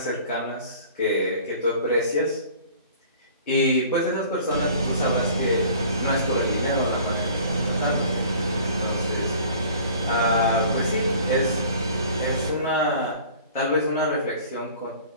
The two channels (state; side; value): inverted; both; correlation -0.49